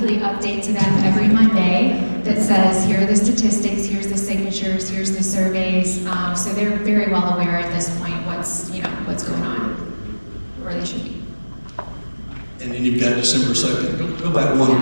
update to them every Monday that says, here are the statistics, here's the signatures, here's the surveys. So they're very well aware at this point what's going on, where they should be. And then you've got December 2nd. Go back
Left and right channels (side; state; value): both; inverted; correlation -1.00